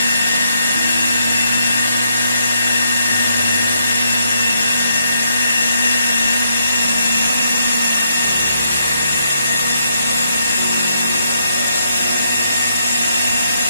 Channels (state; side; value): inverted; both; correlation -0.76